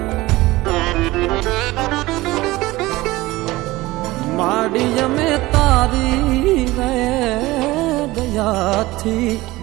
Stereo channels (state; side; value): quieter; left; 19.2 dB